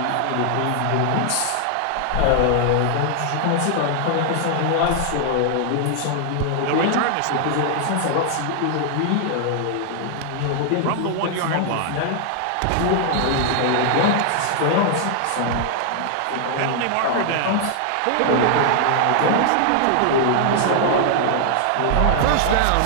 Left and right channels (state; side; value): different; both; correlation 0.00